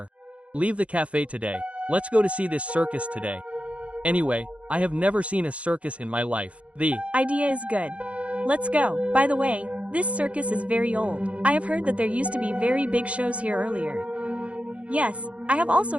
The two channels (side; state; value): left; late; 0.063 ms